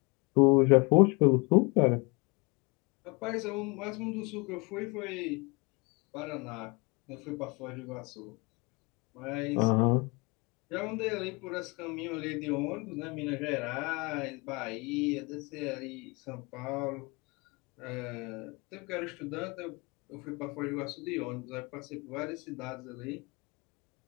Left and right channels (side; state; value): right; quieter; 28.0 dB